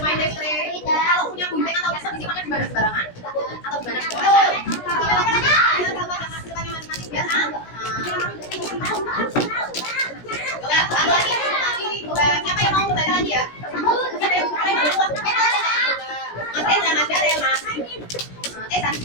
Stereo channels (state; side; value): late; right; 17 ms